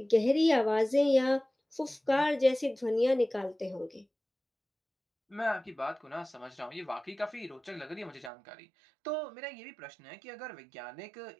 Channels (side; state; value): left; drops out; at 8.3 s